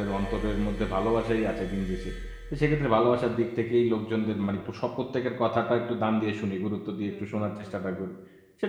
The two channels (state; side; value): identical; both; correlation 1.00